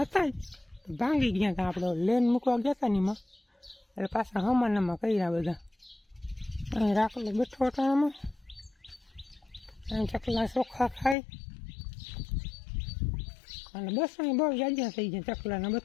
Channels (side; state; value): right; drops out; at 11.2 s